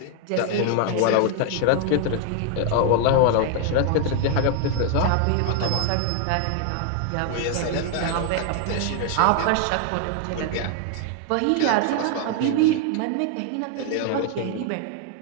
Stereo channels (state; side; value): different; both; correlation 0.00